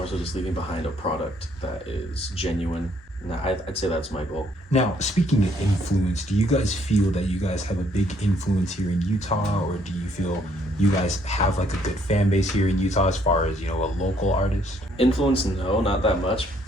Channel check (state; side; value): normal; both; correlation 0.67